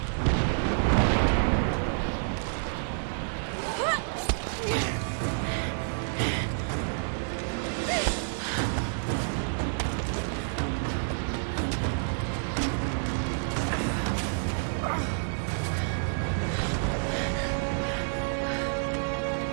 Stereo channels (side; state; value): left; silent; digital silence